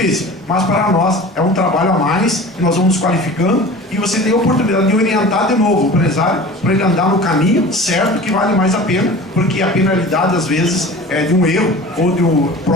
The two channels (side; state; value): both; normal; correlation 0.39